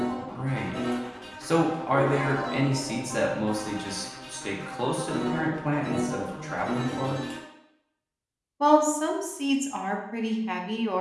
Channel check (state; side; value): identical; both; correlation 1.00